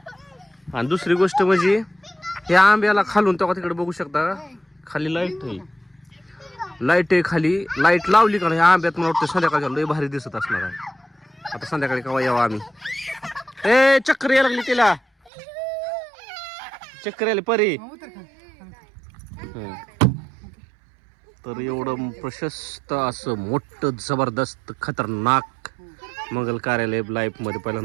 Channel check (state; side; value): drops out; left; at 15.3 s